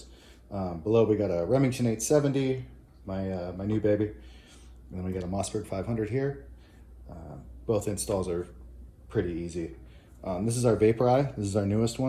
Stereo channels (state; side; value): identical; both; correlation 1.00